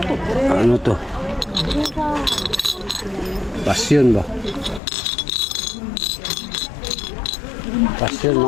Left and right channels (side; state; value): right; drops out; at 4.8 s